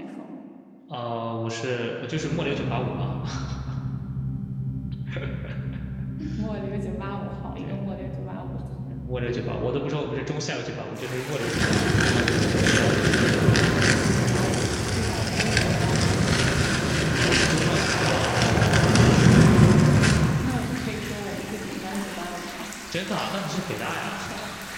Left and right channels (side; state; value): both; identical; correlation 1.00